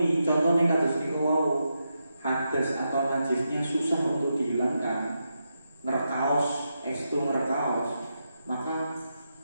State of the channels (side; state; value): both; inverted; correlation -0.85